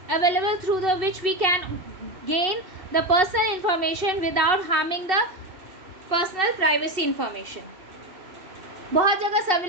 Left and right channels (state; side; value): late; left; 2.7 ms